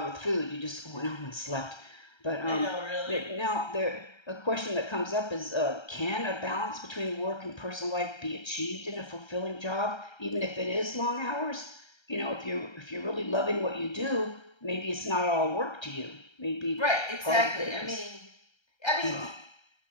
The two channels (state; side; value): late; right; 1.3 ms